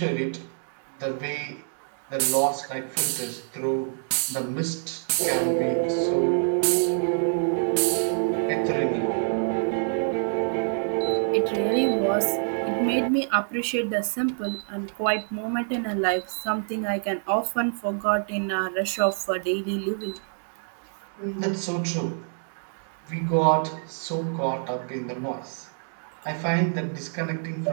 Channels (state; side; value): silent; left; 61 dB below the other